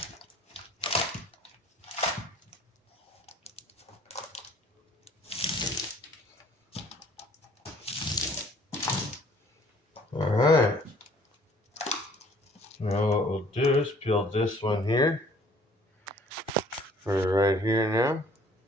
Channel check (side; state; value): both; normal; correlation 0.56